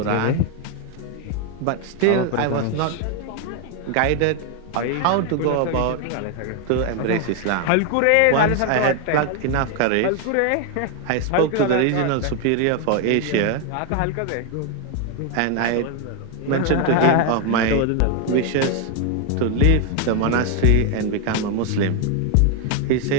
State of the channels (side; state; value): both; different; correlation 0.01